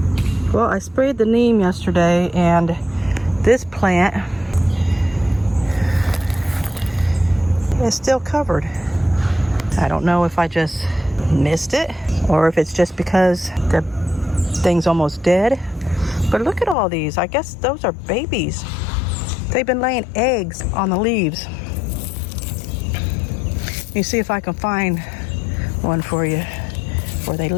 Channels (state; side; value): drops out; right; at 16.8 s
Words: Well, I sprayed the neem yesterday, and this plant is still covered. I don't know if I just missed it or if it's just because the thing's almost dead. But look at all these. I guess those are babies. They've been laying eggs on the leaves. Let me see if I can find one for you where they